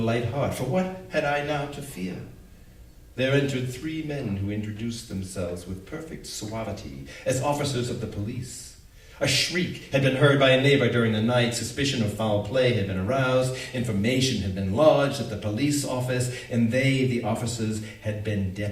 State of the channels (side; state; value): both; identical; correlation 1.00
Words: heart, for what had I now to fear? There entered 3 men who introduced themselves with perfect suavity as officers of the police. A shriek had been heard by a neighbor during the night. Suspicion of foul play had been aroused. Information had been lodged at the police office, and they, the officers, had been